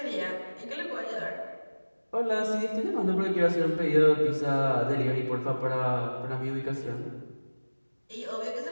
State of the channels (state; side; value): inverted; both; correlation -1.00